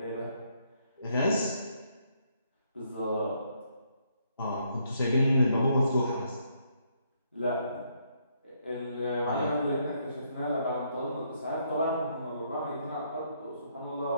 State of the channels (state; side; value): inverted; both; correlation -0.72